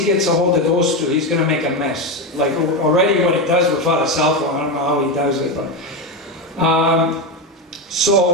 gets a hold of those two, he's going to make a mess. Like already what he does without a cell phone, I don't know how he does it. But,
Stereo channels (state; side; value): normal; both; correlation 0.13